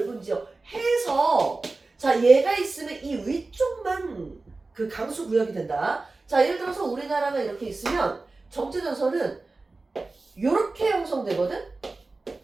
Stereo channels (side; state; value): left; quieter; 3.5 dB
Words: 지역 해서, 자, 얘가 있으면 이 위쪽만 그 강수 구역이 된다. 자, 예를 들어서 우리나라가 이렇게 있으면 정체전선은 이렇게 형성되거든?